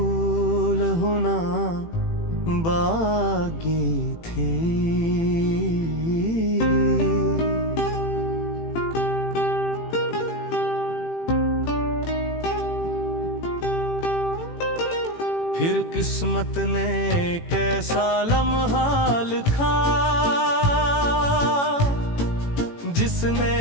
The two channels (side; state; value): right; late; 18 ms